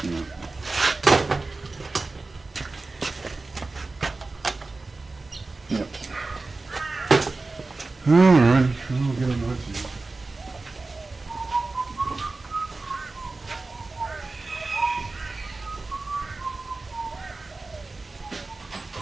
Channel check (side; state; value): left; quieter; 3.5 dB